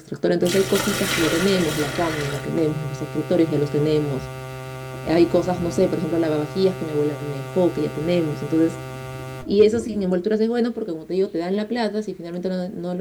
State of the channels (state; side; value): identical; both; correlation 1.00